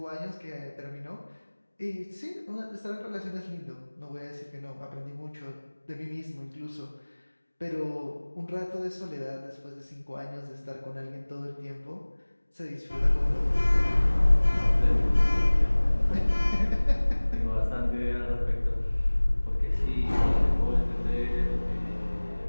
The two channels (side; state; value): both; inverted; correlation -1.00